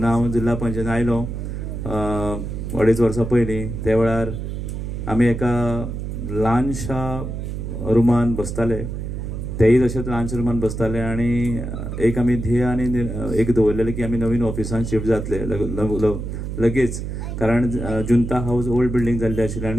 हांव जिल्हा पंचायतीन आयलो 2.5 वर्सां पयलीं त्या वेळार आमी एका ल्हानशा रुमान बसताले, तेय तशेंच ल्हानशा रुमान बसताले आणि एक आमी ध्येय आनी एक दवरलेलें की आमी नवीन ऑफिसान शिफ्ट जातले लगेच. कारण जुंता हाऊस ओल्ड बिल्डींग जाल्ली आशिल्ली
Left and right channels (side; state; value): right; noise; hum, 5 dB below the sound